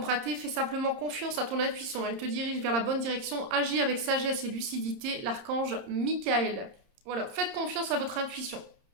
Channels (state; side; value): late; left; 30 ms